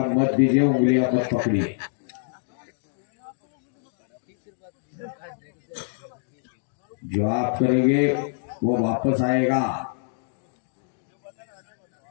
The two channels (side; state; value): right; silent; digital silence